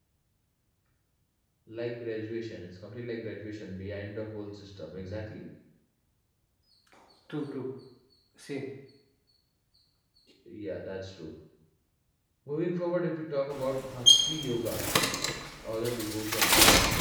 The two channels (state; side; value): identical; both; correlation 1.00